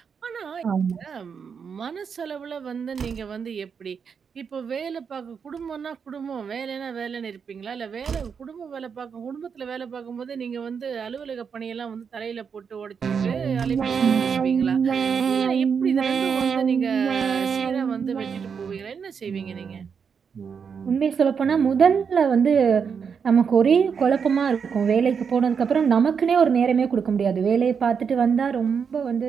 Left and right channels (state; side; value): quieter; left; 6.5 dB